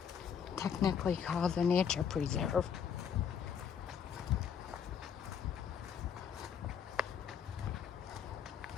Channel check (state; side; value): quieter; right; 7.5 dB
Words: Technically called a nature preserve.